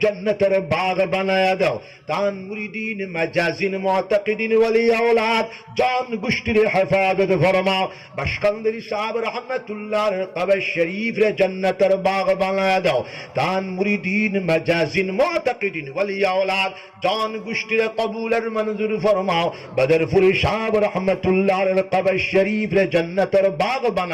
জান্নাতের বাগ বানায়া দাও। তান মুরিদিন মাজাজিন মুতাকিদিন ওয়ালি আওলাদ জান গোষ্ঠীর হেফাজত ফরমাও। বাশকান্দারি সাহেব রহমাতুল্লাহর কবর শরীফ রে জান্নাতের বাগ বানায়া দাও। তান মুরিদিন মাজাজিন মুতাকিদিন ওয়ালি আওলাদ জান গোষ্ঠীর কবুলের মঞ্জুর ফরমাও। বদরপুরি সাহেব রহমাতুল্লাহর কবর শরীফ রে জান্নাতের বাগ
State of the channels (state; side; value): identical; both; correlation 1.00